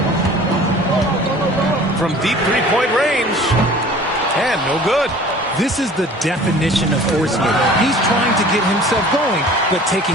From deep three-point range. And no good. This is the definition of forcing it. He's trying to get himself going, but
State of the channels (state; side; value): normal; both; correlation 0.46